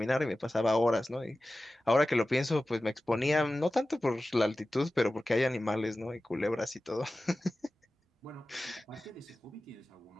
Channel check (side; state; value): both; normal; correlation 0.96